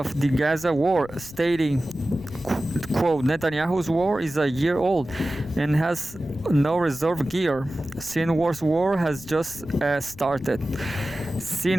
the Gaza war, stating, quote, Netanyahu's war is a year old and has no reserve gear. Sinwar's war has just started.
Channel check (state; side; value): noise; left; rumble, 19 dB below the sound